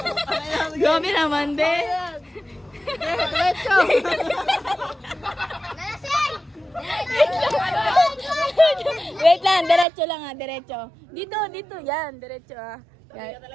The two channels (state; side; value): drops out; left; at 9.9 s